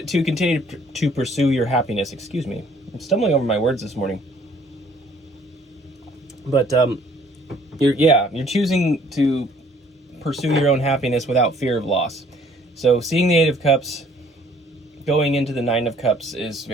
continue to pursue your happiness. Excuse me. I'm stumbling over my words this morning. But you're choosing to pursue your own happiness without fear of loss. So seeing the 8 of Cups going into the 9 of Cups is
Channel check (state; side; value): normal; both; correlation 0.59